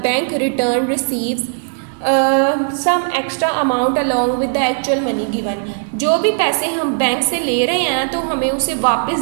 bank return receives some extra amount along with the actual money given. जो भी पैसे हम बैंक से ले रहे हैं तो हमें उसे वापस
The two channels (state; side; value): silent; left; digital silence